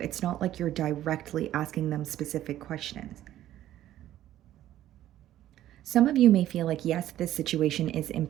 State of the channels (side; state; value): left; quieter; 13.0 dB